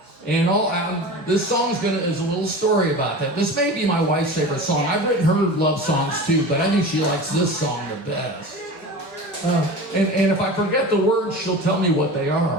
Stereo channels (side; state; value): both; normal; correlation 0.33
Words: And this song's is a little story about that. This may be my wife's favorite song. I've written her love songs too, but I think she likes this song the best. And if I forget the words, she'll tell me what they